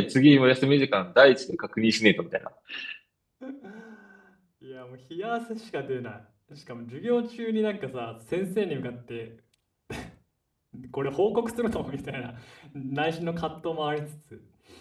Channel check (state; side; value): identical; both; correlation 1.00